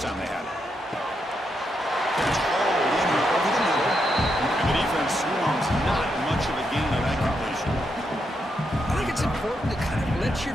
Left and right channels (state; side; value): normal; both; correlation 0.81